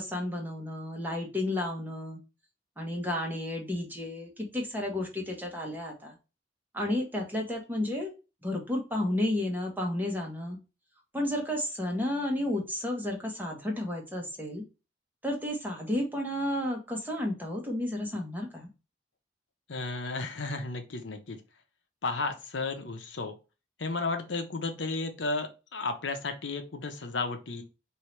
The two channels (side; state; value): both; normal; correlation 0.49